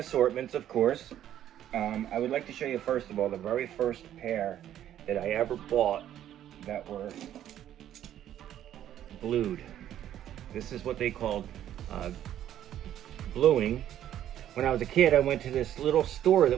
of course. I would like to show you, first of all, the very first pair that I ever bought that were blued. This is what they called bluing. When I was a kid, I went to this little store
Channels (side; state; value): left; quieter; 11.3 dB